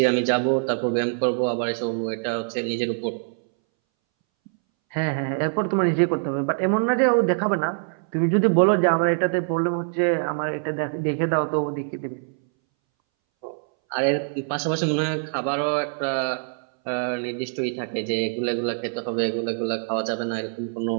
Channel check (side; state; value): left; silent; 62 dB below the other